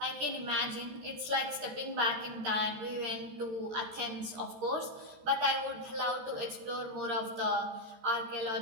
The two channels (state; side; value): late; left; 14 ms